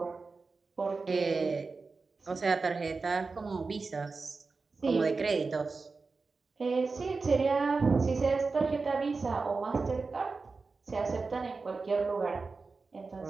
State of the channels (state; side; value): quieter; left; 4.2 dB